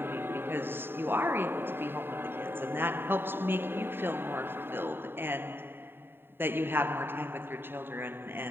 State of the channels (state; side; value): late; left; 0.11 ms